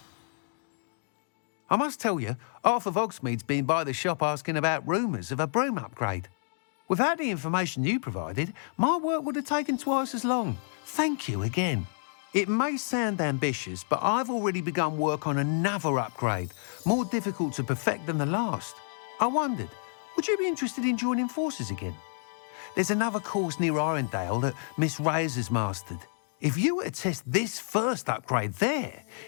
I must tell you, half of Hogsmeade's been by the shop asking about rumours of a broom upgrade. Without the information you provided, my work would have taken twice as long. Thank you again. It may sound ambitious, but I've already begun work on another upgrade, more difficult to perfect than the last. I wondered, would you be interested in joining forces again? There's another course near Irondale that Miss Reyes has mastered. If you were to test this first upgrade there,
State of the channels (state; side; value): silent; right; digital silence